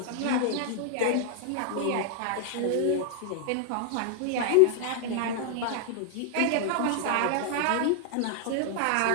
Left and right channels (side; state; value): both; different; correlation 0.00